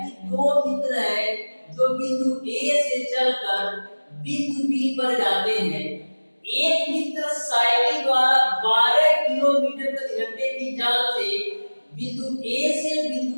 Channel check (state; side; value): inverted; both; correlation -1.00